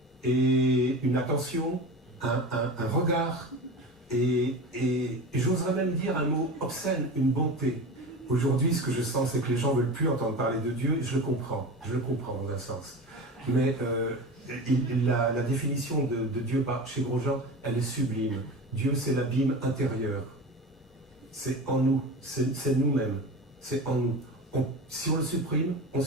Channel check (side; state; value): both; normal; correlation 0.30